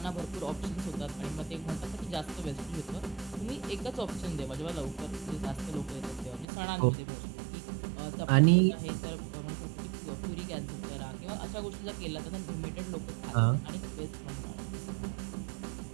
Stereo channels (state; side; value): drops out; left; at 6.5 s